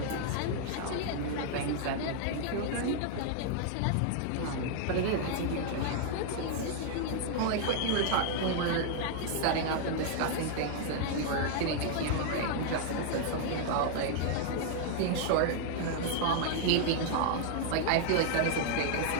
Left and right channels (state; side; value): different; both; correlation 0.00